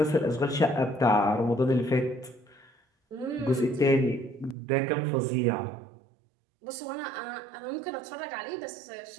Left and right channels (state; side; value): drops out; left; at 4.5 s